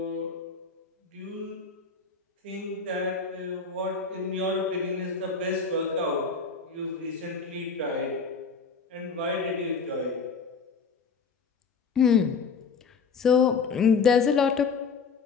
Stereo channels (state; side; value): quieter; right; 5.2 dB